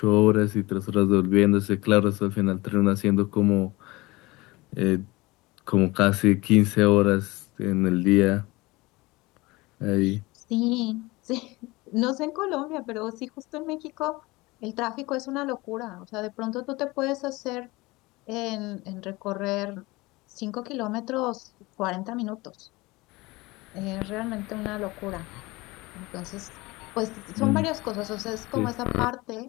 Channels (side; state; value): right; quieter; 22.0 dB